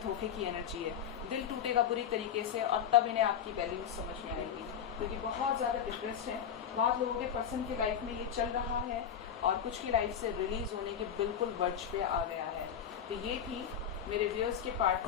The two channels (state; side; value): quieter; right; 8.6 dB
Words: की एनर्जी है। दिल टूटेगा बुरी तरीके से और तब इन्हें आपकी वैल्यू समझ में आएगी, क्योंकि बहुत ज़्यादा डिप्रेस्ड है। बहुत लोगों के पर्सन की लाइफ में ये चल रहा है और कुछ की लाइफ से रिलीज होने के बिल्कुल वर्ज पे आ गया है। तो ये थी मेरे व्यूअर्स के